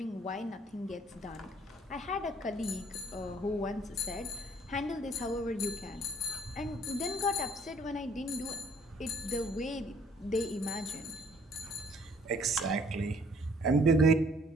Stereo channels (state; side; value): normal; both; correlation 0.59